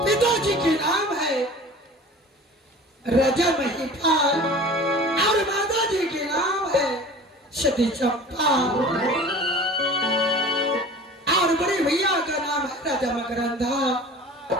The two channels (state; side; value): normal; both; correlation 0.41